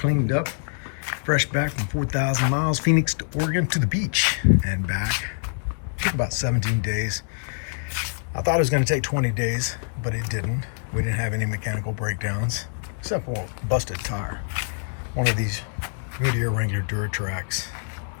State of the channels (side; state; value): right; silent; digital silence